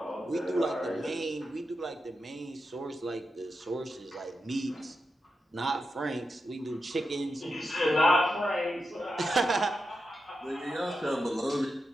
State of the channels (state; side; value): normal; both; correlation 0.88